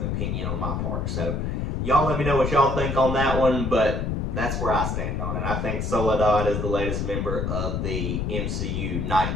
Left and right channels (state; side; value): noise; left; rumble, 1 dB below the sound